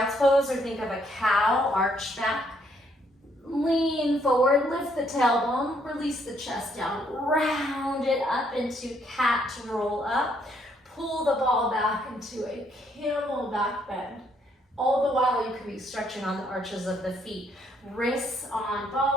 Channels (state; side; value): normal; both; correlation 0.70